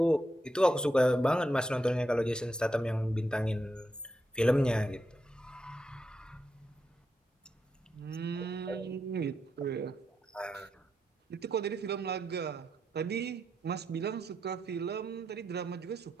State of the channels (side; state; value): both; normal; correlation 0.83